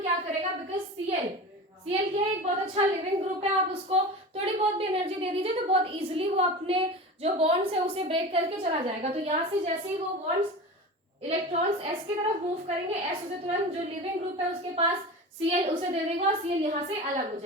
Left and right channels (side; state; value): both; normal; correlation 0.31